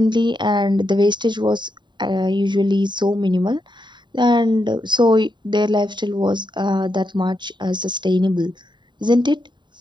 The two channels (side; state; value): left; late; 0.22 ms